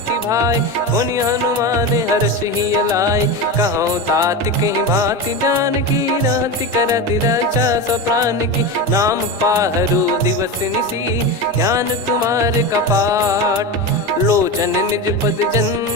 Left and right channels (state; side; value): normal; both; correlation 0.21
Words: भाई, पुनि हनुमान हर्ष ही लाए। कहूँ तात कहीं भांति जानकी, रहति करति रक्षा सो प्राण की। नाम पाहरु दिवस निसी, ज्ञान तुम्हारे कपाट। लोचन निज पद